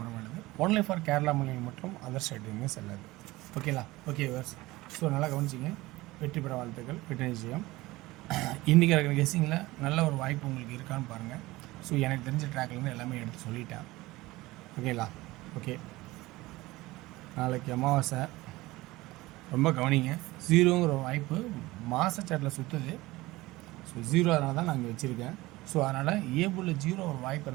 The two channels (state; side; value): quieter; left; 19.5 dB